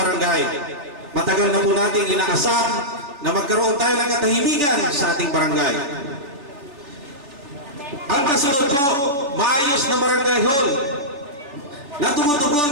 Matagal na po natin inaasam na magkaroon tayo ng katahimikan sa ating barangay. Ang kasunod po, maayos na barangay hall na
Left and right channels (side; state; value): left; late; 3.4 ms